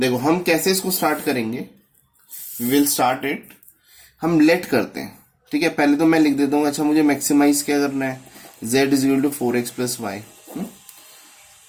हम कैसे इसको स्टार्ट करेंगे. We will start it. हम लेट करते हैं. ठीक है, पहले तो मैं लिख देता हूँ. अच्छा, मुझे मैक्सिमाइज क्या करना है? z is equal to 4x plus y.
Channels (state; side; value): identical; both; correlation 1.00